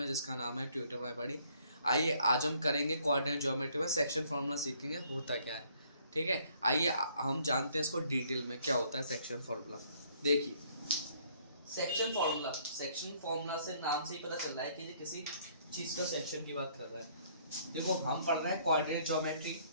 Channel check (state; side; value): inverted; both; correlation -0.63